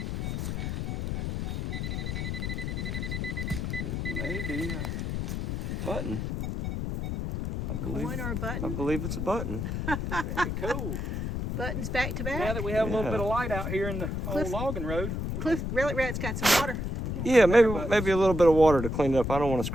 Maybe a button. Coin or a I button? believe it's a button. Very cool. Buttons back to Now back? that we have a little Yeah. bit of light out here in the Cliff- old logging road. Cliff, Relic Rat's got some water. Yeah, maybe a little bit of water to clean it up. I don't want to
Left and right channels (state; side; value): noise; left; rumble, 2 dB below the sound